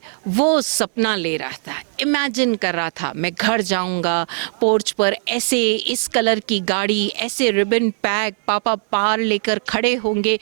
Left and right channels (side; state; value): left; silent; digital silence